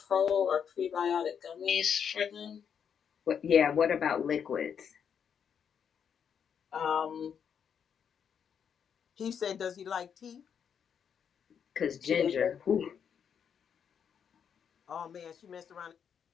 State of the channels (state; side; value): quieter; right; 7.6 dB